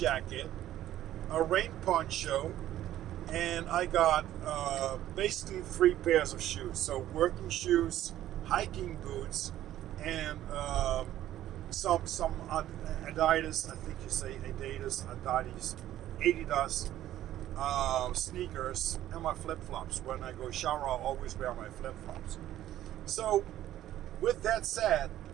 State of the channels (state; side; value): quieter; left; 13.0 dB